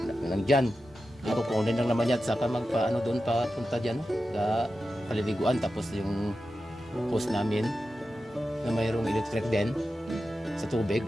Dyan. Ako kunin lang naman yan, saka doon pa punta dyan, sa paliliguan. Tapos yung post namin, na mayroong electric din, sa tubig.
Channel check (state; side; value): normal; both; correlation 0.91